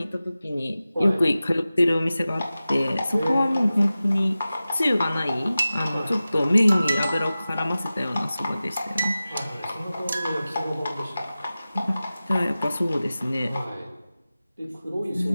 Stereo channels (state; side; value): inverted; both; correlation -0.96